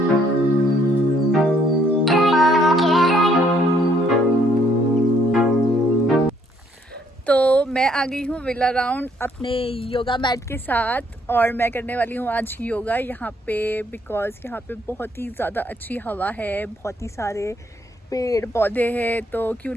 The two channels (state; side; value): normal; both; correlation 0.67